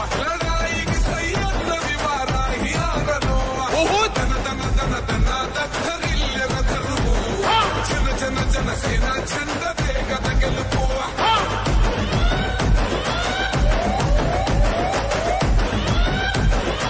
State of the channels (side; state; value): both; identical; correlation 1.00